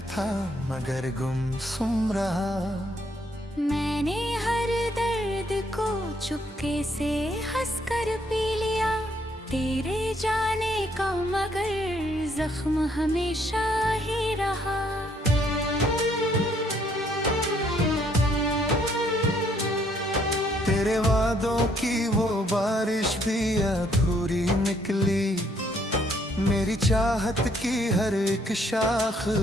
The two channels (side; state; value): both; normal; correlation 0.68